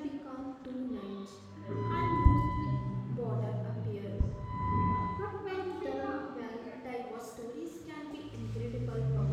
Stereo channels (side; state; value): both; identical; correlation 1.00